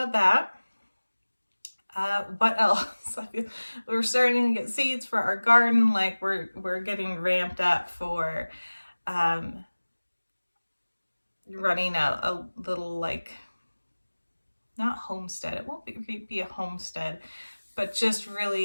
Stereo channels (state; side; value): inverted; both; correlation -1.00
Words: that. What else? We're starting to get seeds for our garden. Like we're getting ramped up for running a little, like, not homestead. It won't be a homestead, but just